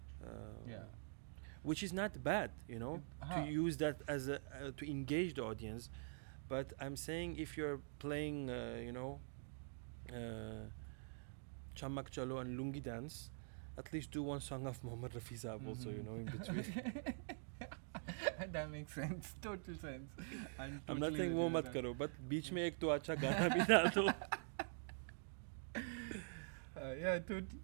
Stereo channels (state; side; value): silent; left; digital silence